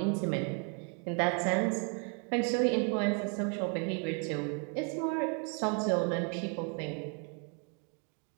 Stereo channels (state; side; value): quieter; left; 36.6 dB